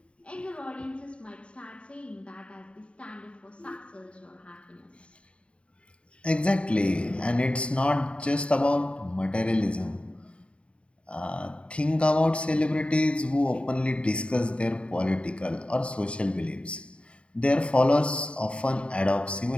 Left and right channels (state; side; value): late; right; 0.059 ms